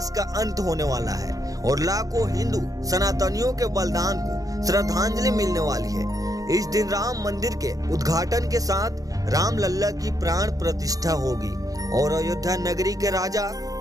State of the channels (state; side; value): late; left; 0.17 ms